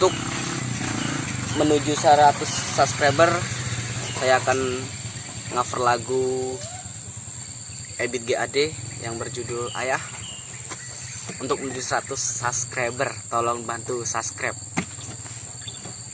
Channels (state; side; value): identical; both; correlation 1.00